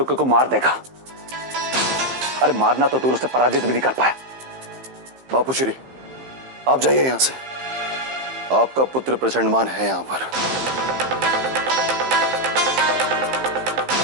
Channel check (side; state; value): left; late; 15 ms